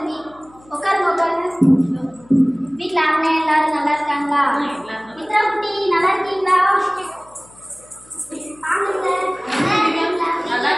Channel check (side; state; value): left; noise; hum, 27 dB below the sound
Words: உட்காருங்க, உட்காருங்க. வீட்டில் அண்ணன் எல்லாரும் நல்லா இருக்காங்களா? மித்ரா குட்டி நல்லா இருக்கீங்களா?